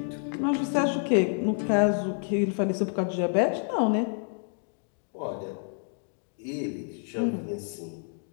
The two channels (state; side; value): silent; right; 59 dB below the other